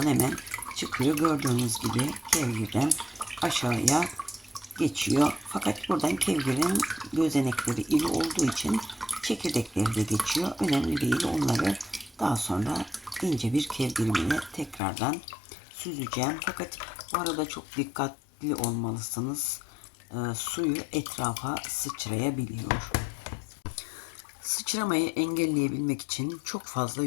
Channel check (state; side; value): drops out; right; at 14.8 s